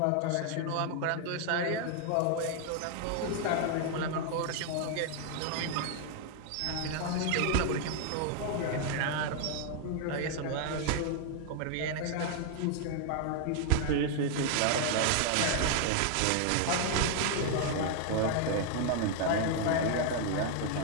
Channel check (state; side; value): different; both; correlation 0.00